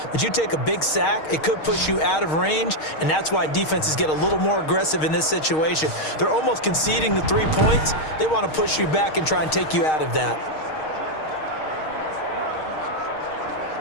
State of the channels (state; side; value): late; right; 6.5 ms